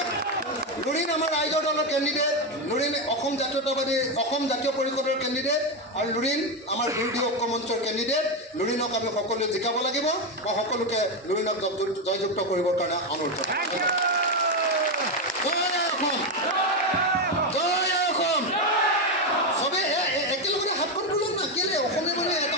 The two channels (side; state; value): both; normal; correlation 0.09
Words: লুৰিণ আমাৰ ৰাইজৰ দলৰ কেণ্ডিডেট, লুৰিণ অসম জাতীয় পৰিষদৰ কেণ্ডিডেট, আৰু লুৰিণ আমাৰ বিৰোধী ঐক্য মঞ্চৰ কেণ্ডিডেট। লুৰিণক আমি সকলোৱে জিকাব লাগিব। মই সকলোকে লুৰিণক জয়যুক্ত কৰিবৰ কাৰণে অনুৰোধ জনাইছোঁ। জয় অসম, জয় অসম। চবেই একেলগতে হাতখন তোলক না, কেলে অসমীয়া মানে এটা